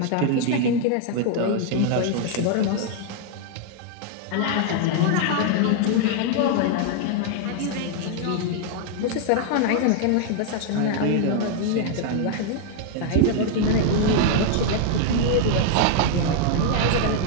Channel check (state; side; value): different; both; correlation 0.00